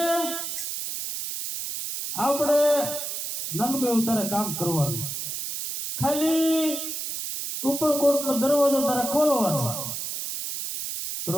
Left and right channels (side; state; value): right; noise; hiss, 5 dB below the sound